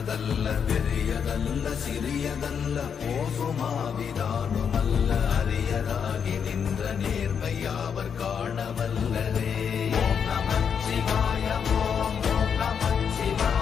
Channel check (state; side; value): quieter; right; 7.2 dB